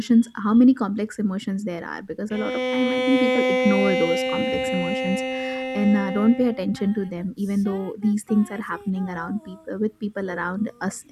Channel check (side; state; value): both; identical; correlation 1.00